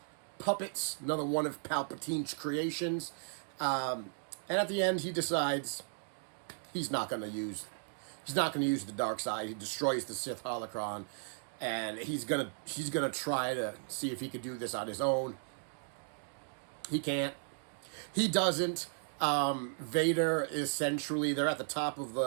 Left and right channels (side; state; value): left; silent; digital silence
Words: puppets, another one of Palpatine's creations? And at the end, he decides he's not going to use the dark side. He destroys the Sith holocron, and he's gonna try to see if he could do this on his own. He can't. He doesn't. Vader essentially, they're at the top of